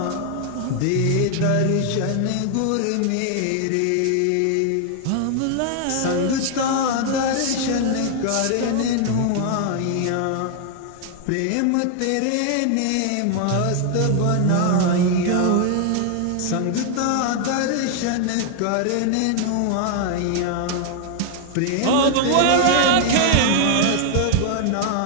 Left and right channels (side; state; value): both; different; correlation 0.00